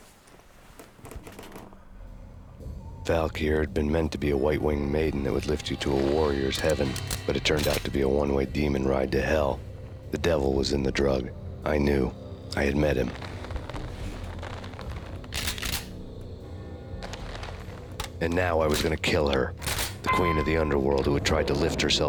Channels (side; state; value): both; identical; correlation 1.00